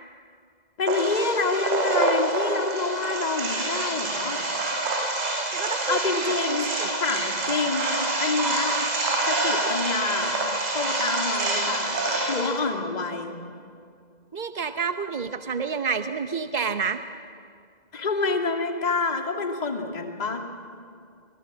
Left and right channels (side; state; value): right; late; 2.0 ms